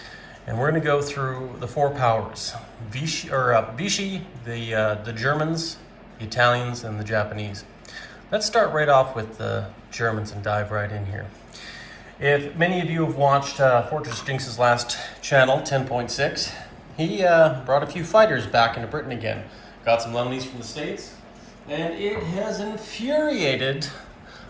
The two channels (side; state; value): both; identical; correlation 1.00